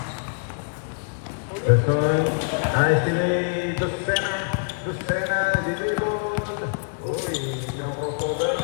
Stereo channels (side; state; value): right; silent; digital silence